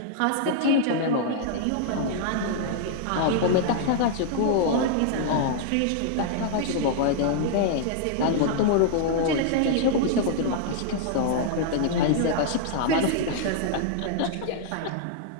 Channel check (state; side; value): different; both; correlation -0.01